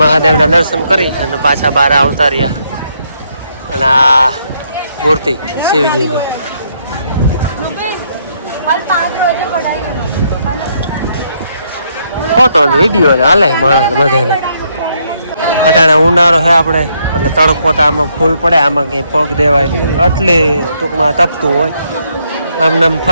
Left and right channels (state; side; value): inverted; both; correlation -0.74